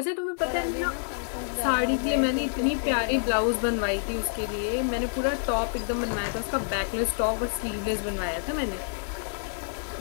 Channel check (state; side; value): silent; right; 60 dB below the other